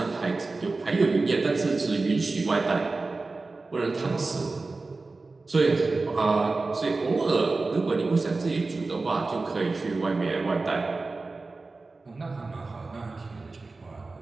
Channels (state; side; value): quieter; left; 3.6 dB